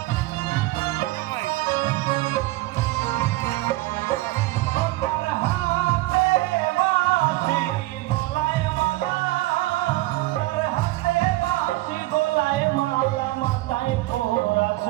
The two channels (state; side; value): quieter; left; 19.0 dB